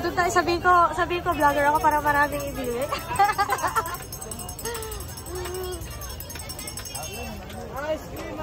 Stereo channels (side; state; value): both; identical; correlation 1.00